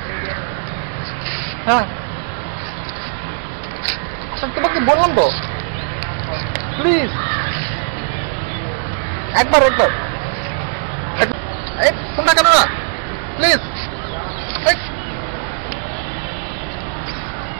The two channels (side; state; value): left; silent; digital silence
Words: হ্যাঁ তোমাকে বললাম তো, প্লিজ একবার ফোনটা কেন না, প্লিজ।